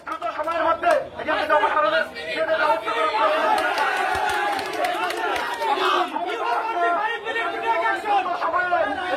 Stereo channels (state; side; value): identical; both; correlation 1.00